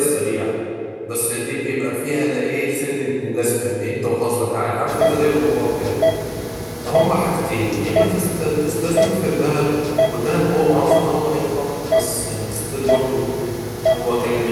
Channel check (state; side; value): identical; both; correlation 1.00